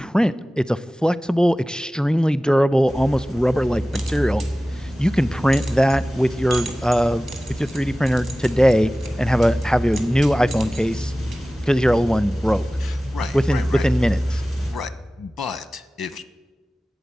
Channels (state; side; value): normal; both; correlation 0.97